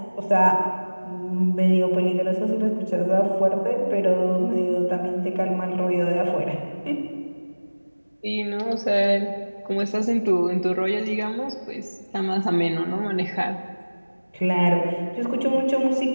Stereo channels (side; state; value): both; inverted; correlation -1.00